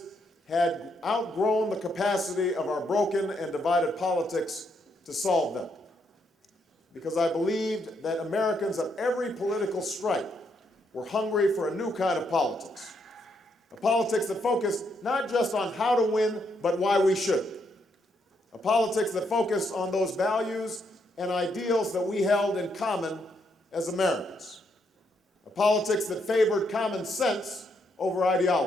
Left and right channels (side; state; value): both; normal; correlation 0.76